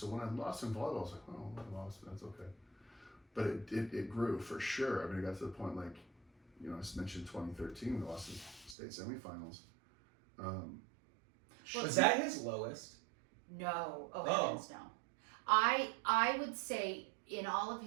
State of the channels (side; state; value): left; drops out; at 8.8 s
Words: when I lost in volleyball, I was like, oh, I lost, that's okay. But it grew for sure. I mean, it got to the point like, you know, I mentioned 2013, we lost the state semifinals. Was that his lowest? No, Oh. heavens no. I would say in all of